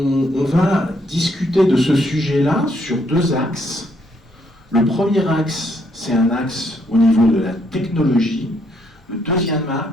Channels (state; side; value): normal; both; correlation 0.72